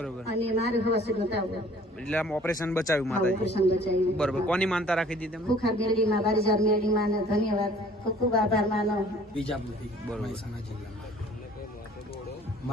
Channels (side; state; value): both; normal; correlation 0.53